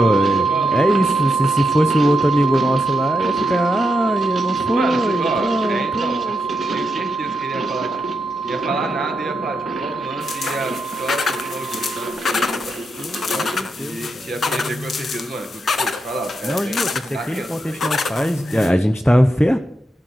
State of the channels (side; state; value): both; normal; correlation 0.84